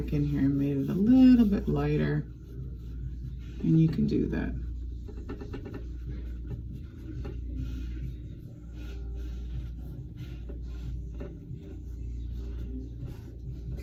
in here and made it a little bit lighter. And you can do that.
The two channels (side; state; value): both; identical; correlation 1.00